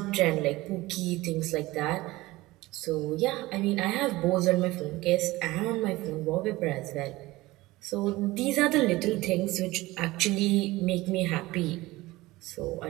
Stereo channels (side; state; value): left; quieter; 19.4 dB